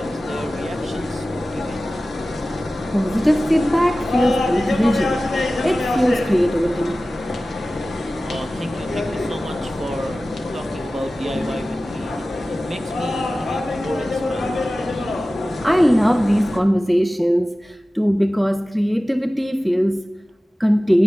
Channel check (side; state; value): both; normal; correlation 0.96